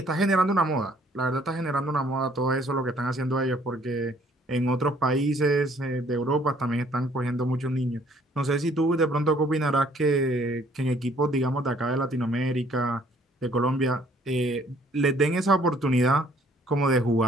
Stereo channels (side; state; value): both; normal; correlation 0.61